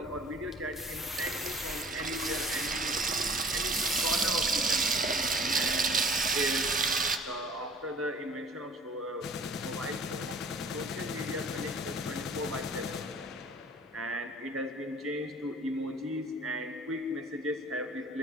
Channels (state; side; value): normal; both; correlation 0.49